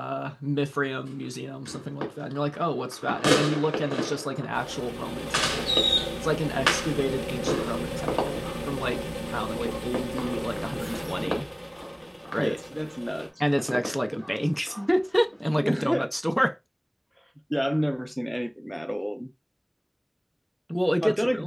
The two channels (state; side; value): identical; both; correlation 1.00